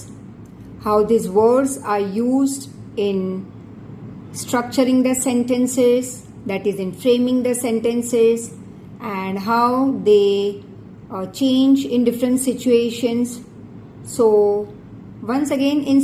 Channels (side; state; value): both; identical; correlation 1.00